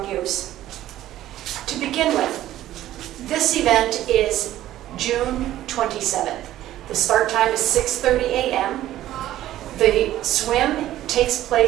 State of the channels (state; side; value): quieter; left; 13.7 dB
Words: use. To begin with, this event is June 27th. The start time is 6:30 a.m. The swim takes